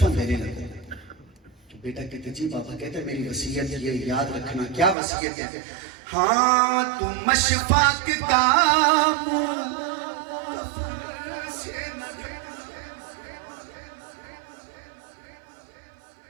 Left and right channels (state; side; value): drops out; left; at 5.0 s